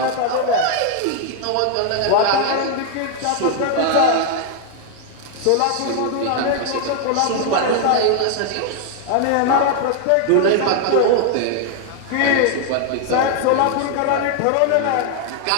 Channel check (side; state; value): both; different; correlation 0.00